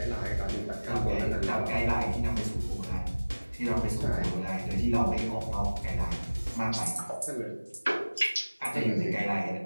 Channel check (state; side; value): inverted; both; correlation -1.00